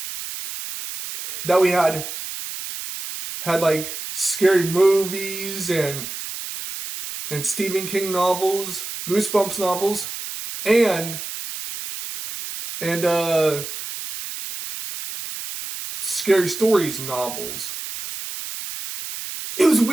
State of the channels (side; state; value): right; noise; hiss, 8 dB below the sound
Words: that we had like scary movies and Stephen King novels, Goosebumps novels, and Scary Stories novels. It was